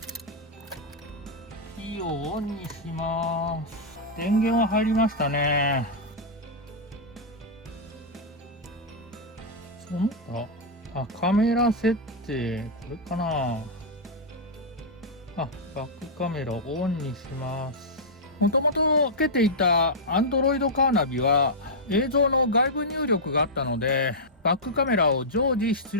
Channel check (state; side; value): normal; both; correlation -0.08